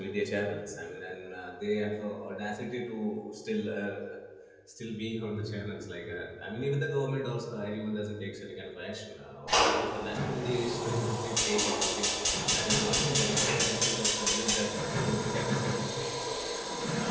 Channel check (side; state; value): both; identical; correlation 1.00